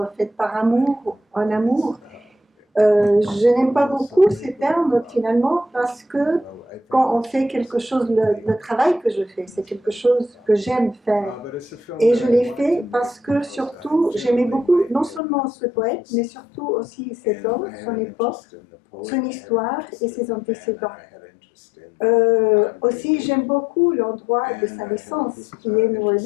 faite par amour, en amour. Je n'aime pas beaucoup ces termes finalement parce que quand on fait quelque chose, le travail que je fais, c'est quelque chose que j'aime faire. Et je l'ai fait parce que surtout, j'aimais beaucoup non seulement ce poète, mais surtout aussi cet homme, son époque, son histoire et ses antécédents. Aussi, j'aime beaucoup l'endroit de sa naissance, qui est New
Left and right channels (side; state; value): right; drops out; at 15.2 s